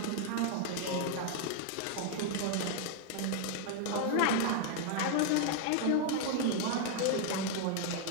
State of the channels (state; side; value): different; both; correlation 0.00